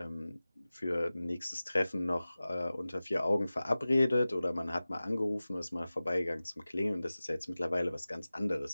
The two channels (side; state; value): both; inverted; correlation -0.97